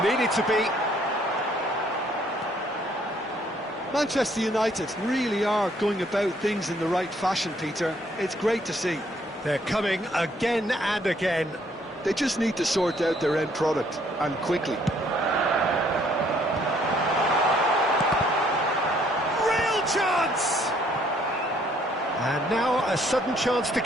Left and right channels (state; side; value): normal; both; correlation 0.65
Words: Needed to be. Manchester United really are going about things in the right fashion, Peter. It's great to see. They're coming again and again. They just need to sort out their end product, and quickly. Real chance! And now a sudden chance to